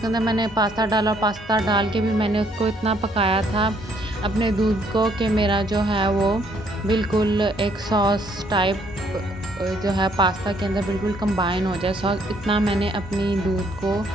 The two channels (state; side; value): normal; both; correlation 0.67